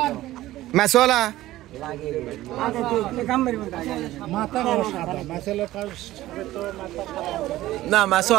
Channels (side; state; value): left; quieter; 15.8 dB